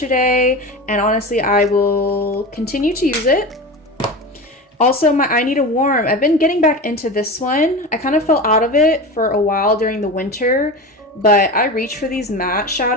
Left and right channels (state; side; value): normal; both; correlation 0.27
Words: and honestly, I will continue to use it. Also, my I Need a Warm. I've been getting back into this one. I kind of fell out of it for a while during the winter, but I reach for these matte